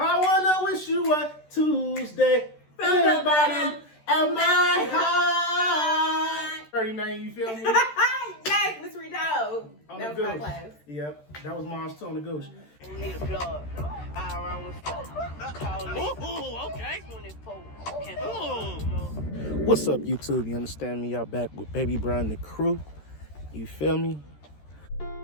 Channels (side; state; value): right; late; 13 ms